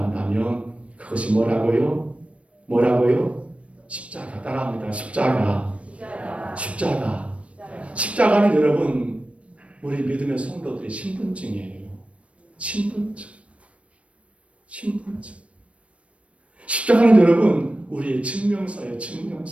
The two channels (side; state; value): left; late; 0.062 ms